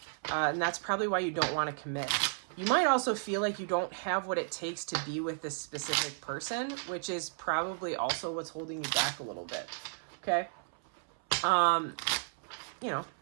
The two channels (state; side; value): silent; left; 55 dB below the other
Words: and that's probably why you don't want to commit. You might also feel like you don't have what it takes to be with this specific person, which is probably also what's holding you back a little bit. Okay? You know,